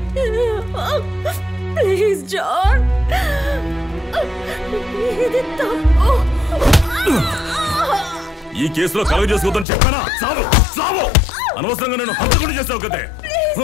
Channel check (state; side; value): drops out; right; at 9.7 s